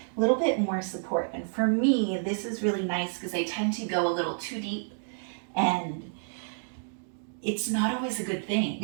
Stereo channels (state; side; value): silent; left; digital silence